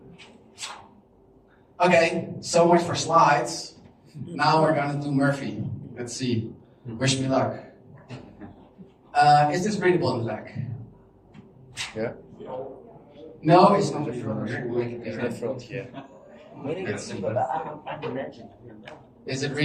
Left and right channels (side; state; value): both; identical; correlation 1.00